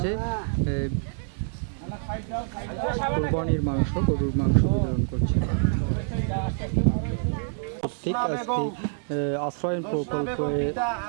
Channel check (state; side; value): silent; left; digital silence